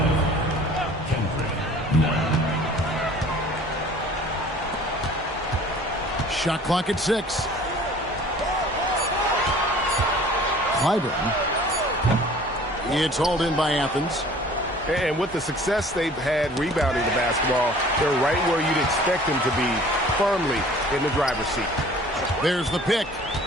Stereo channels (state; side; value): normal; both; correlation 0.49